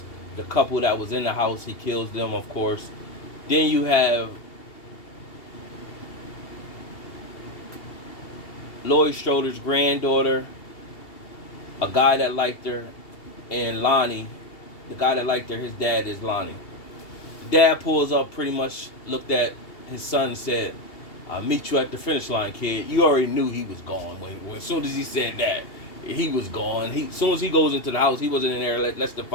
The couple that was in the house, he kills them, of course. Then you have Laurie Strode's granddaughter, a guy that liked her, and Lonnie, the guy that liked her, his dad is Lonnie. Dad pulls up, pretty much looked at his son and said, I'll meet you at the finish line, kid. You already knew he was gone. When as soon as he said that, he was gone. As soon as he goes into the house, he wasn't in there less than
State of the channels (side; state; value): right; late; 2.8 ms